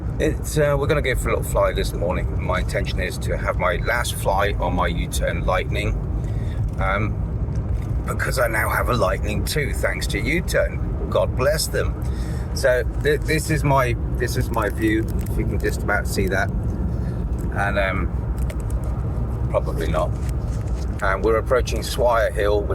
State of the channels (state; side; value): identical; both; correlation 1.00